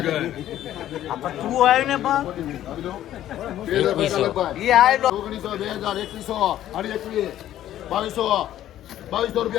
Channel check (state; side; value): quieter; right; 12.5 dB